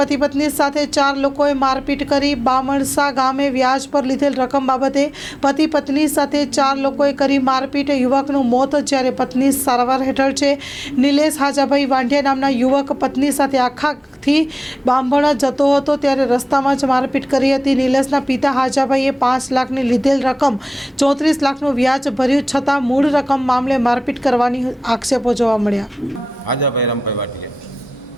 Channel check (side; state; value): both; normal; correlation 0.97